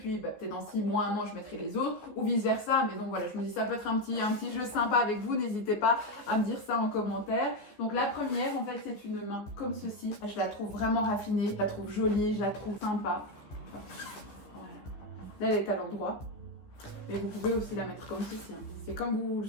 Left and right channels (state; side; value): late; right; 14 ms